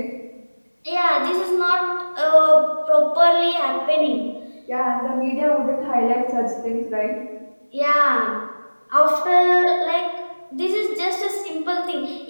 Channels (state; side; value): inverted; both; correlation -1.00